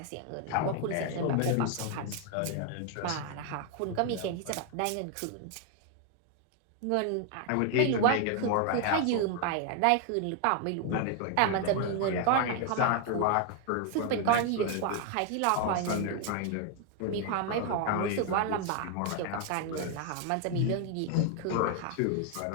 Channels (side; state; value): both; different; correlation 0.00